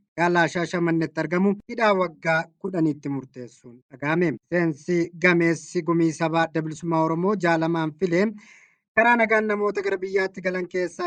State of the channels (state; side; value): identical; both; correlation 1.00